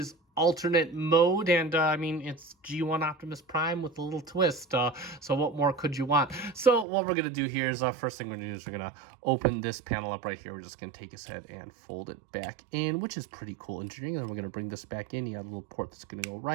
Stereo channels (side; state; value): left; drops out; at 6.9 s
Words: alternate mode, and I mean, it's G1 Optimus Prime with a little twist, so what more could you want? So what we're gonna do here is, first thing we're gonna do is we're gonna open this panel up right here. We're just gonna take his head and fold it back in, which is pretty cool engineering. Then we're gonna bring this back in. You got a little port that's gonna go